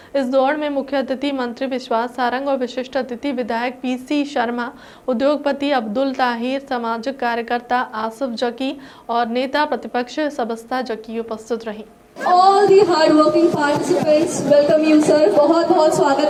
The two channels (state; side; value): identical; both; correlation 1.00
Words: इस दौड़ में मुख्य अतिथि मंत्री विश्वास सारंग और विशिष्ट अतिथि विधायक पीसी शर्मा, उद्योगपति अब्दुल ताहिर, सामाजिक कार्यकर्ता आसिफ जकी और नेता प्रतिपक्ष सबस्ता जकी उपस्थित रही। All the hard working participants, welcome you sir. बहुत बहुत स्वागत